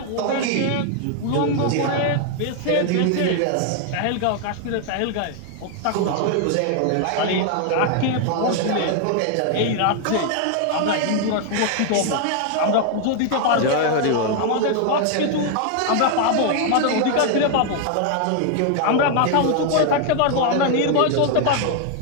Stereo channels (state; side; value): different; both; correlation 0.00